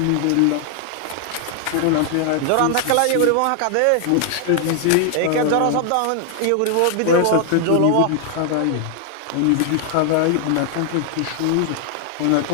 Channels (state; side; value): different; both; correlation 0.00